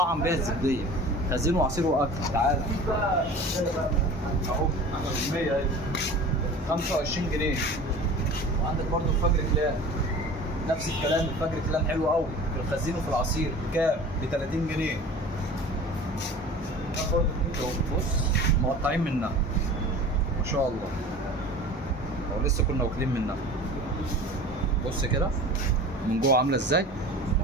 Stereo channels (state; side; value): normal; both; correlation 0.39